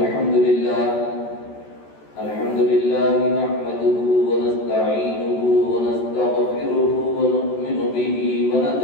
لله نحمده ونستعينه ونستغفره ونؤمن به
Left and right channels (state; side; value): late; right; 14 ms